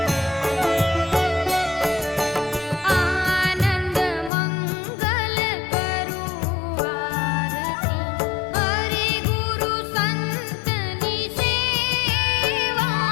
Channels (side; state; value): right; drops out; at 4.3 s